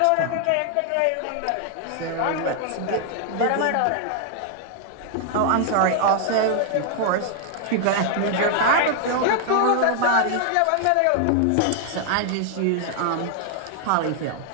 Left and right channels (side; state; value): both; different; correlation 0.00